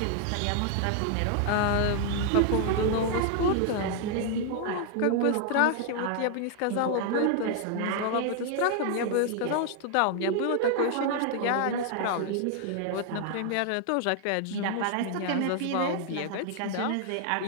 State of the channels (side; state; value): both; different; correlation 0.00